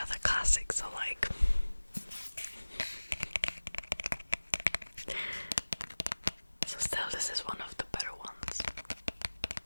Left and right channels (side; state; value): both; inverted; correlation -1.00